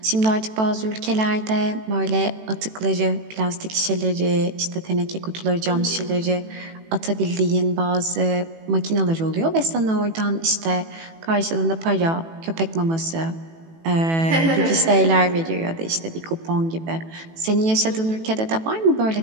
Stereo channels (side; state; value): left; late; 18 ms